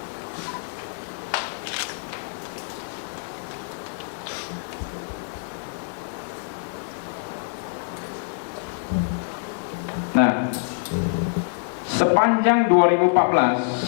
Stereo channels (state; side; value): silent; right; digital silence